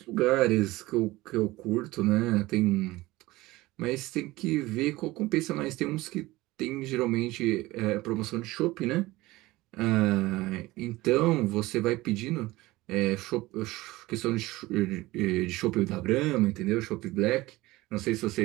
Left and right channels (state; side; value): quieter; left; 19.3 dB